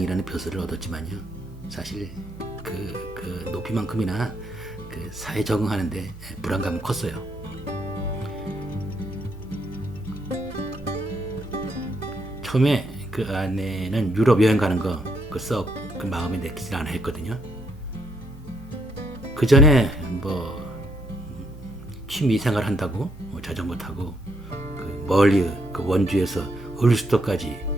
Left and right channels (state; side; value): normal; both; correlation 0.74